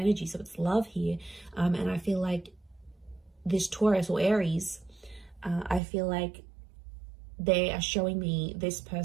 so it's love here. And I feel like this Taurus or Aries, I feel like they are showing me this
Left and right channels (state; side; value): drops out; left; at 5.8 s